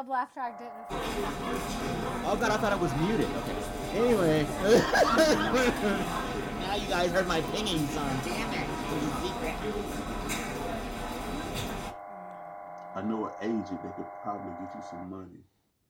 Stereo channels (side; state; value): both; identical; correlation 1.00